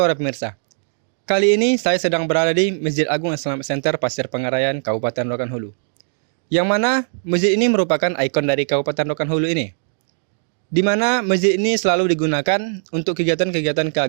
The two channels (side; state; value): left; silent; digital silence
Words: pemirsa. Kali ini saya sedang berada di Masjid Agung Islamic Center Pasir Pengarayan, Kabupaten Rokan Hulu. Yang mana masjid ini merupakan ikon dari Kabupaten Rokan Hulu ini. Di mana masjid ini selalu digunakan untuk kegiatan-kegiatan